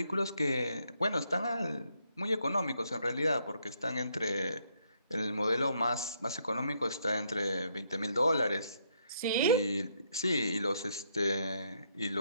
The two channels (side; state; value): both; inverted; correlation -0.73